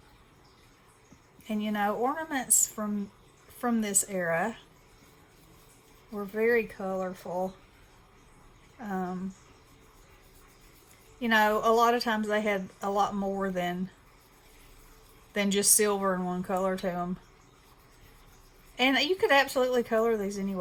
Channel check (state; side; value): identical; both; correlation 1.00